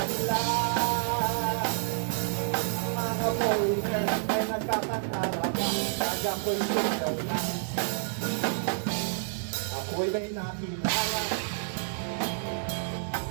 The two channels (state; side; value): silent; left; digital silence